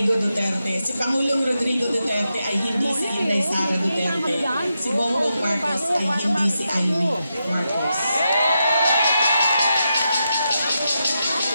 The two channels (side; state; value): both; inverted; correlation -0.86